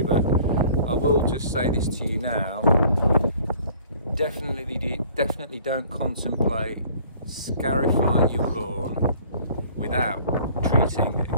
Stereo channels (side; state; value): both; inverted; correlation -0.52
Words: but I will just say this to you now. Definitely don't contemplate scarifying your lawn without treating